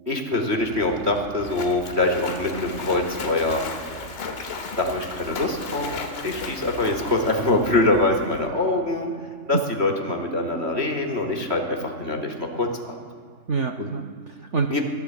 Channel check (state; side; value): late; left; 3.1 ms